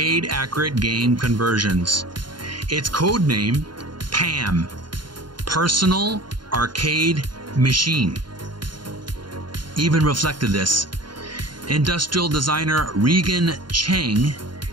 game conversions. Its codename, PAM, Personal Arcade Machine, even reflected this. Industrial designer Regan Cheng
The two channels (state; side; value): late; left; 0.71 ms